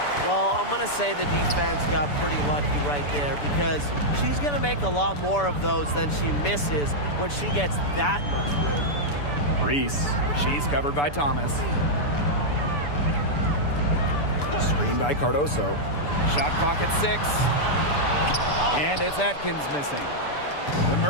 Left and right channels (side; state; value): right; late; 6.9 ms